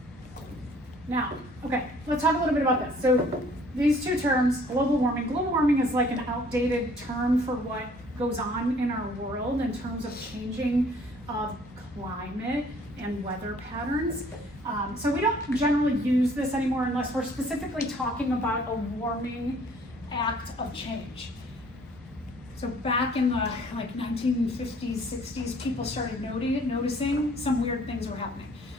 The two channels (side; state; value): both; normal; correlation 0.57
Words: Now, okay, let's talk a little bit about this. So these two terms, global warming. Global warming is like an outdated term for what goes on in our world in terms of changing of climate and weather patterns. So we don't generally use this anymore unless we're specifically talking about a warming act of change. So back in the 1950s, 60s, people started noticing some weird things were happening.